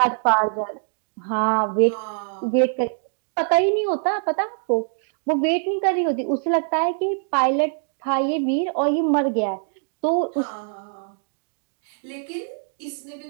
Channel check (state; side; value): silent; left; digital silence